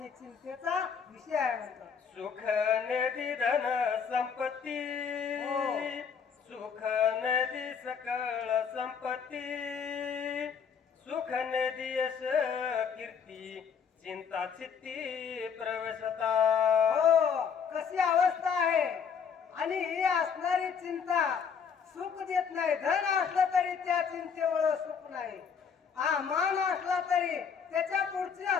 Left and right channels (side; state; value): right; quieter; 6.7 dB